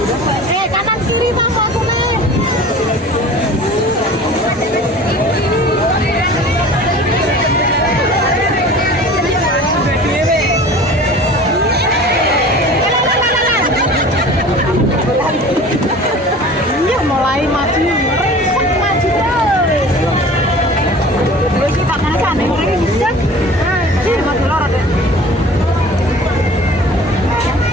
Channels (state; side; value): normal; both; correlation 0.42